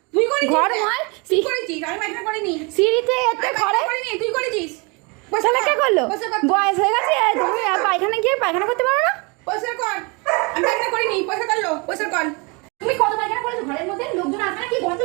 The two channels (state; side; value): quieter; left; 30.0 dB